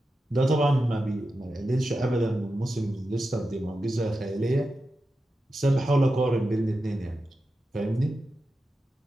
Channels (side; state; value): both; normal; correlation 0.91